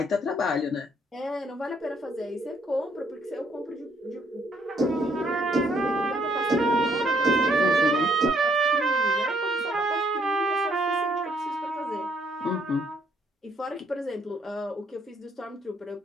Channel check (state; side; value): normal; both; correlation 0.68